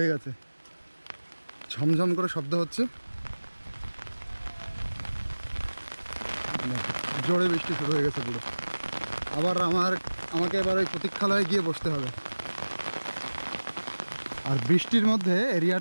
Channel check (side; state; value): both; inverted; correlation -1.00